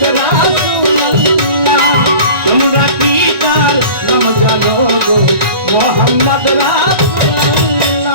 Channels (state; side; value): late; left; 1.9 ms